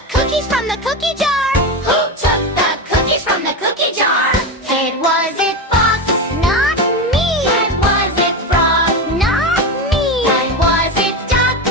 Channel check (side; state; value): both; normal; correlation 0.18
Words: cookies from the cookie jar? Who took the cookies from the cookie jar? It was it fox, not me. And was it frog, not me. And was it duck,